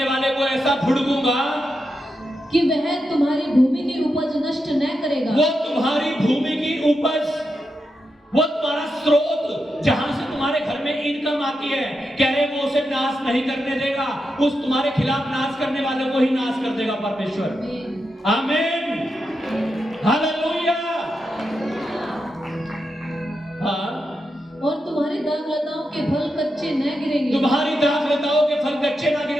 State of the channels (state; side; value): normal; both; correlation 0.87